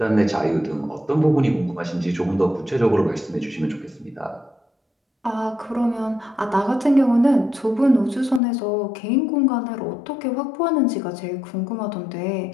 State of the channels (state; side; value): drops out; right; at 8.4 s